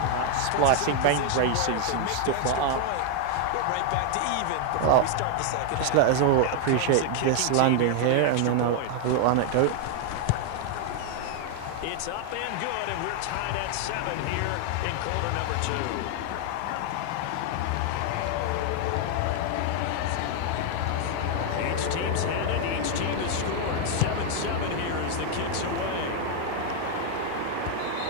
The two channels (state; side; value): different; both; correlation 0.00